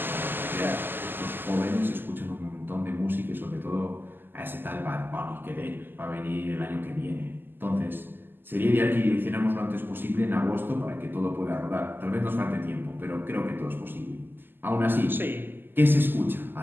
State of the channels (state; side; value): late; left; 0.095 ms